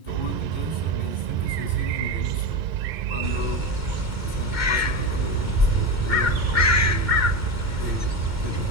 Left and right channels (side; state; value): left; late; 2.1 ms